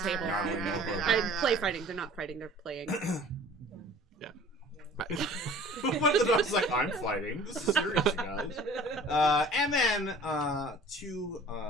I play fighting. They're not fighting. They're playing. One of the dogs is like, I'm fighting. This is serious, you guys. And then to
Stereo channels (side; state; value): both; normal; correlation 0.48